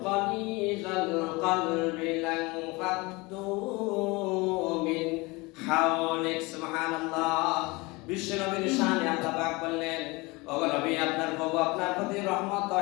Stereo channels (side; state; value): right; quieter; 24.5 dB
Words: গালিযাল কলবি লানফাদ্দু মিন হাওলিক। সুবহানাল্লাহ। বিশ্বনবীর শানে আল্লাহ পাক বললেন, ওগো নবী, আপনার প্রভু আপনার প্রতি রহমত